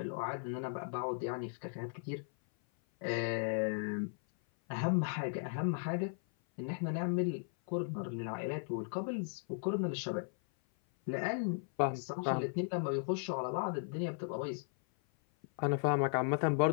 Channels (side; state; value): right; silent; 53 dB below the other